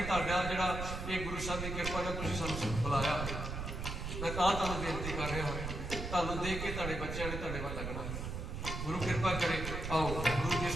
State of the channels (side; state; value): right; noise; rumble, 4 dB below the sound